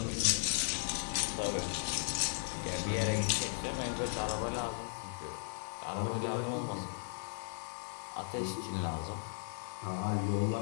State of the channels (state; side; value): silent; right; 53 dB below the other